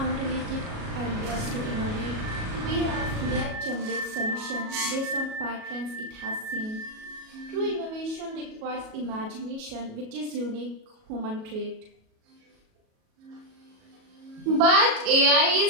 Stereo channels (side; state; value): left; late; 37 ms